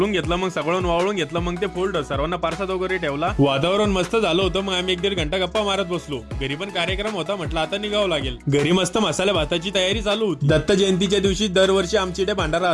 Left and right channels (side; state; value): both; identical; correlation 1.00